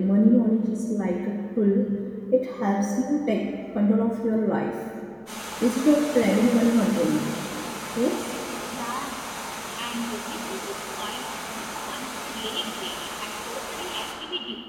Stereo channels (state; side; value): identical; both; correlation 1.00